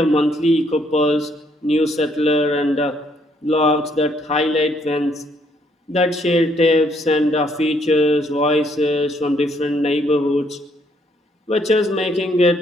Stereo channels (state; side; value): normal; both; correlation 0.69